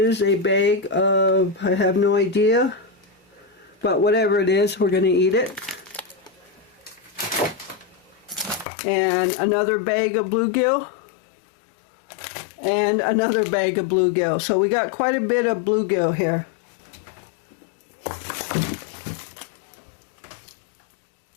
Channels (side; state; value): right; drops out; at 8.7 s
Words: a bag of, I have no idea, but whatever it is, we're going to eat it. And another bag of bluegill. And another bag of bluegill. So we got quite a bit of bluegill here.